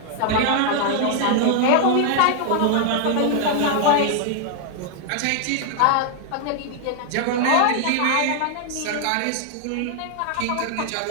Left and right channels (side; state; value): both; different; correlation 0.00